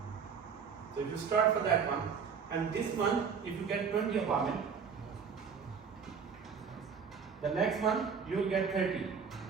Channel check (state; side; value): quieter; left; 6.3 dB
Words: So if you start for that one, and this one, if you get 20 apartment, the next month you will get 30,